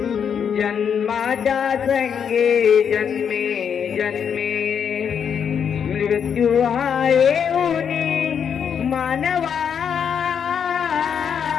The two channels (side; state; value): right; quieter; 7.5 dB